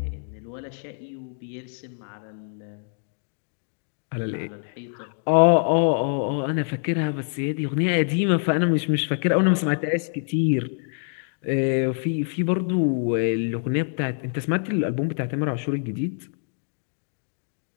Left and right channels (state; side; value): silent; right; digital silence